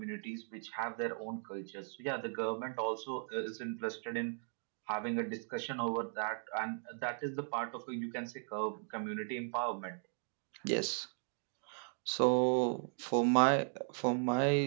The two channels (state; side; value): silent; left; digital silence